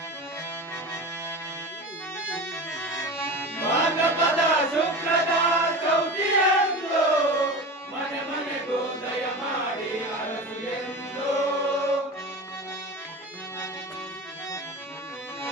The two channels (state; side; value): normal; both; correlation 0.30